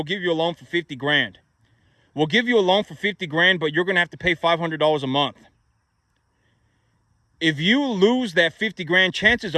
give you a loan for 50 grand. We'll give you a loan for 50 grand, but you're going to have to pay $500 a month. If you lose that 50 grand, chances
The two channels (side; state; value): both; identical; correlation 1.00